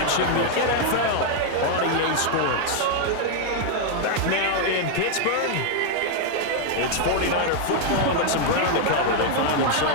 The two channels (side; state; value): both; different; correlation 0.00